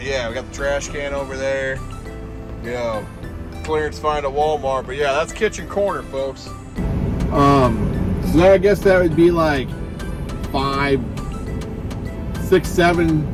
we got the trash can over there. Clearance find at Walmart. But yeah, that's kitchen corner, folks. So I guess that would be like 5, 6,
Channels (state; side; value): identical; both; correlation 1.00